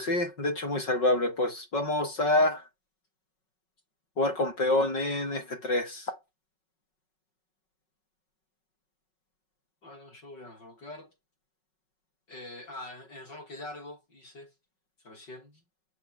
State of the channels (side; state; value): right; late; 5.4 ms